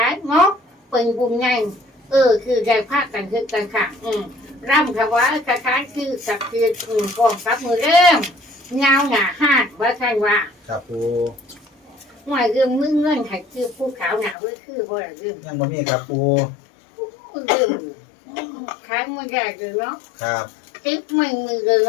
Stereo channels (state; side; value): drops out; right; at 14.4 s